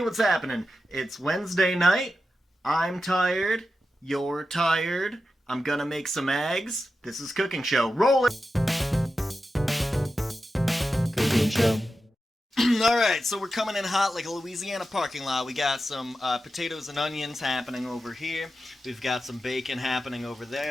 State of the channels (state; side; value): normal; both; correlation 0.91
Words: happening? It's Wednesday night. I'm tired. You're tired. I'm gonna make some eggs. This is Cooking Show. Roll it! Cooking show. Alright, so we're coming in hot like a Louisiana parking lot. We got some potatoes and onions happening over here. We've got some bacon happening over